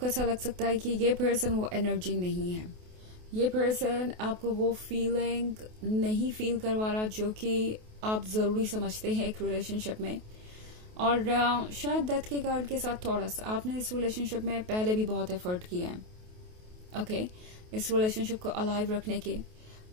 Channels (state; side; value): late; left; 28 ms